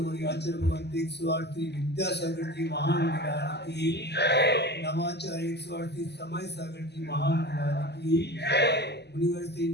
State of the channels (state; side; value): late; right; 0.49 ms